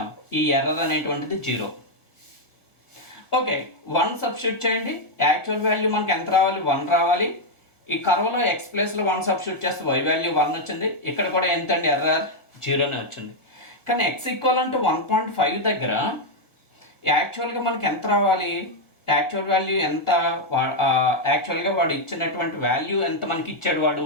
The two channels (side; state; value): right; late; 1.6 ms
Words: ఈ ఎర్రర్ అనేటువంటిది 0. ఓకే, 1 సబ్స్టిట్యూట్ చేయండి. యాక్చువల్ వాల్యూ మనకి ఎంత రావాలి? 1 రావాలి. ఈ కర్వ్లో ఎక్స్ ప్లేస్లో 1 సబ్స్టిట్యూట్ చేస్తే వై వాల్యూ 1 వచ్చింది. ఇక్కడ కూడా ఎంతండి? ఎర్రర్ 0నే వచ్చింది. కానీ ఎక్స్ ఈక్వల్ అంటే 1.5 దగ్గర యాక్చువల్గా మనకి ఎంత రావాలి? యాక్చువల్ వాల్యూ ఎంత? యాక్చువల్గా వాడు ఇచ్చినటువంటి వాల్యూ ఎంత మనకి ఇచ్చాడు వాడు?